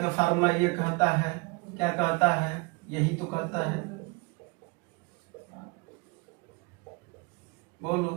फार्मूला ये कहता है, क्या कहता है, यही तो कहता है,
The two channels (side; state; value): left; quieter; 26.9 dB